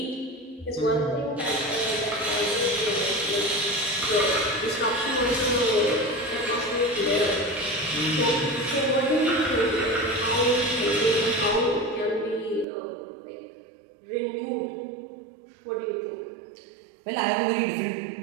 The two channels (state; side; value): drops out; left; at 12.7 s